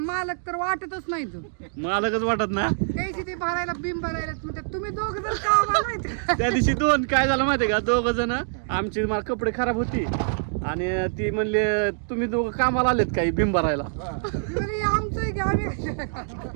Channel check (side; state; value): left; silent; digital silence